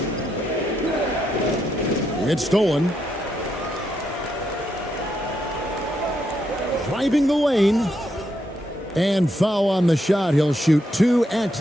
It's stolen. Driving the lane. And foul on the shot. He'll shoot 2 at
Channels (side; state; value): both; normal; correlation 0.80